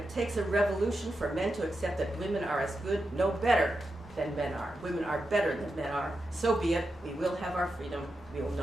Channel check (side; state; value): both; normal; correlation 0.88